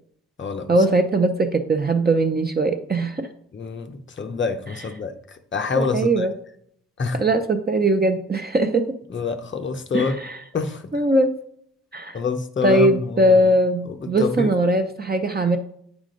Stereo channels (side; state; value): both; normal; correlation 0.52